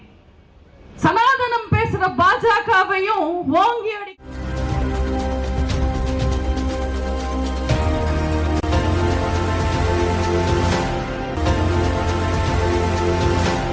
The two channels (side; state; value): both; identical; correlation 1.00